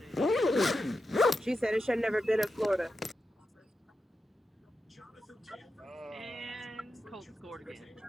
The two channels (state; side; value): normal; both; correlation 0.89